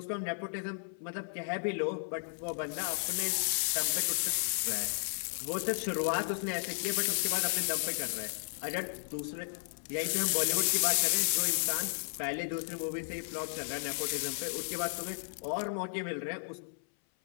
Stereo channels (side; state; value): right; silent; 55 dB below the other